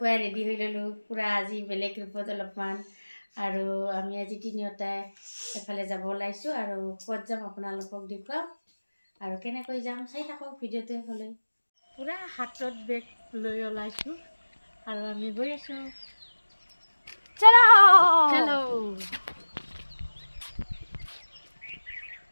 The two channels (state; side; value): inverted; both; correlation -1.00